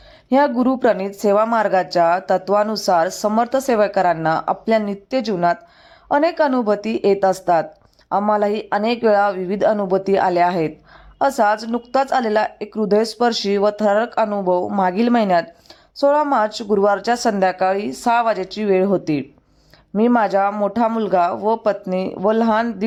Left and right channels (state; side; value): identical; both; correlation 1.00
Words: ह्या गुरुप्रणीत सेवा मार्गाच्या तत्वानुसार समर्थ सेवकांना आपल्या नित्य जीवनात अनेक अनुभूती येत असतात. आम्हालाही अनेक वेळा विविध अनुभूती आल्या आहेत. असाच नुकताच आलेला एक हृदयस्पर्शी व थरारक अनुभव मागील महिन्यात 16 मार्च गुरुवारच्या संध्याकाळी 6 वाजेची वेळ होती. मी माझा मोठा मुलगा व पत्नी व लहान